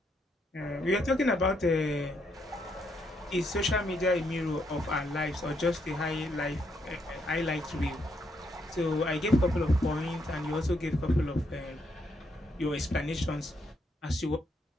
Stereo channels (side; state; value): both; normal; correlation 0.76